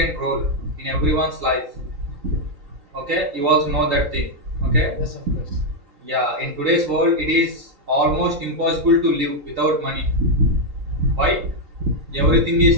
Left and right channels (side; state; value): left; late; 3.8 ms